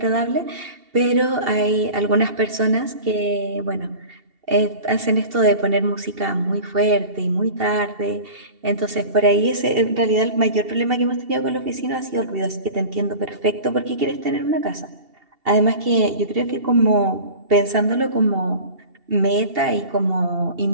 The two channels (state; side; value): late; left; 2.7 ms